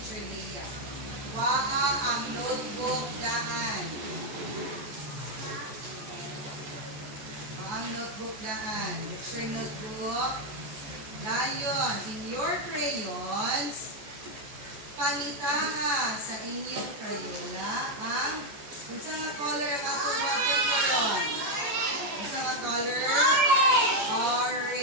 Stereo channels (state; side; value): late; left; 14 ms